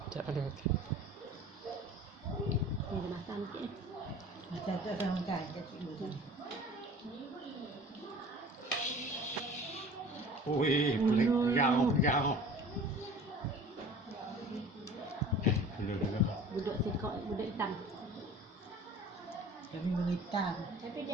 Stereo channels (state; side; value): normal; both; correlation 0.44